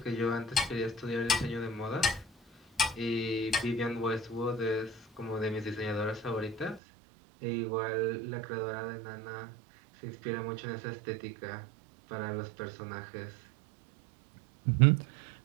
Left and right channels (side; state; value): left; drops out; at 6.8 s